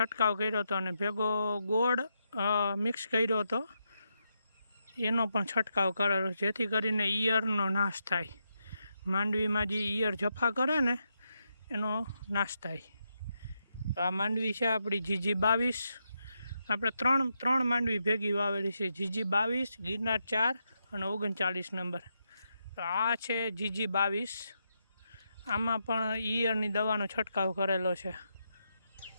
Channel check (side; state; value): both; inverted; correlation -0.83